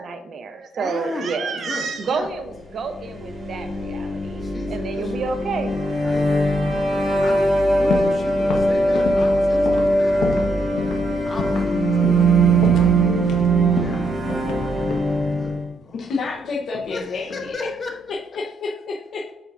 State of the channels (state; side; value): normal; both; correlation 0.78